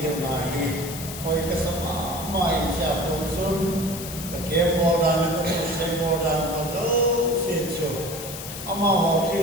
na hi koi ka sama ma in cha kon sun ka ke bodan ko se bodan ko se cho ama ho ki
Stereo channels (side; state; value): left; noise; hiss, 10 dB below the sound